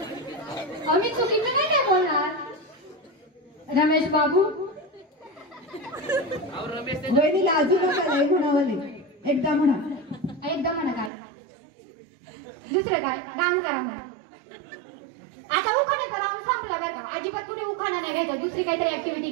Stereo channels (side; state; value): left; drops out; at 11.1 s